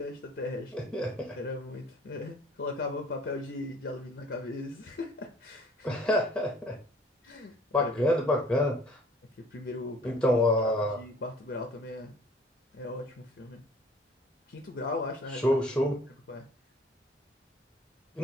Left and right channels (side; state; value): both; normal; correlation 0.53